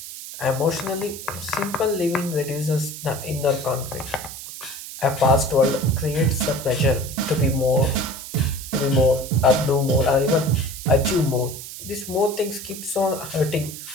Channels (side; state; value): right; noise; hiss, 11 dB below the sound